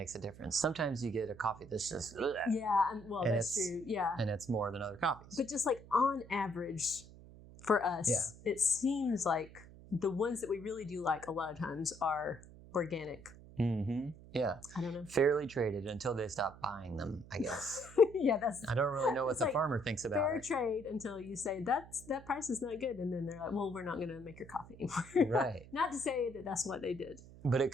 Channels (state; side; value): noise; right; hum, 19 dB below the sound